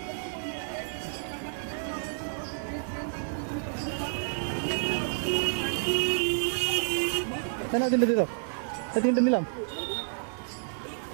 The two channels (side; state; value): left; silent; digital silence